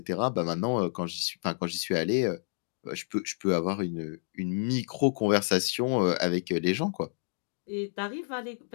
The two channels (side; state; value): right; silent; digital silence